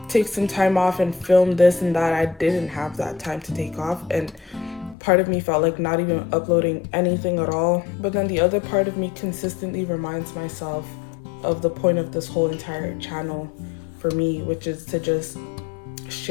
take some time off and film this and that, I didn't have that time to take off. And part of me felt like not even uploading anything at all. But then the other part of me consistently reminds myself of the point of this whole entire channel for me, which is to just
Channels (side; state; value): right; drops out; at 5.0 s